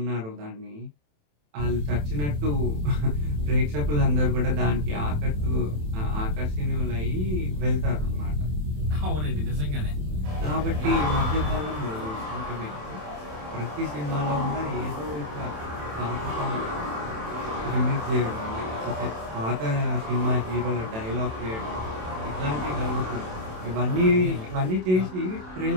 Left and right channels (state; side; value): late; left; 27 ms